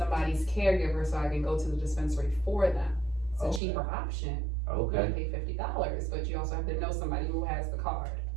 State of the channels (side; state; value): left; drops out; at 3.6 s